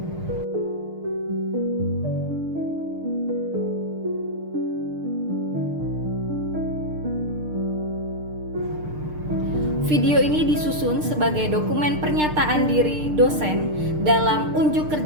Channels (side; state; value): left; late; 6.6 ms